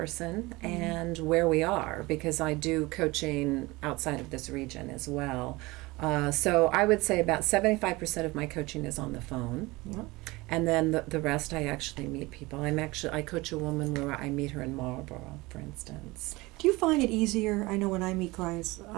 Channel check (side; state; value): left; quieter; 22.1 dB